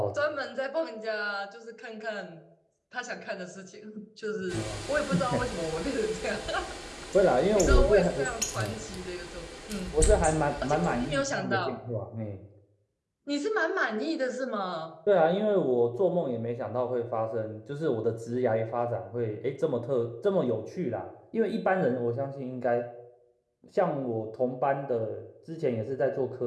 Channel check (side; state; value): both; identical; correlation 1.00